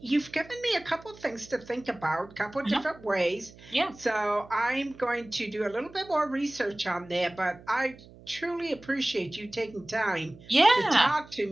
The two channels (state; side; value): noise; right; hum, 21 dB below the sound